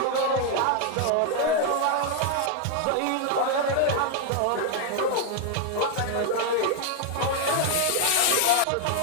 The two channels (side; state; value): both; different; correlation 0.00